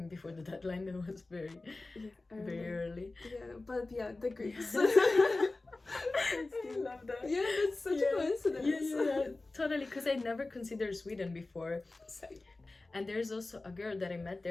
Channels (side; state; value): right; quieter; 3.2 dB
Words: before the deadline. That was very early. But the Greeks. I love that. Yeah, that's such a coincidence. Yeah, totally, because I never considered Sweden before. Same. And there's also a girl that I met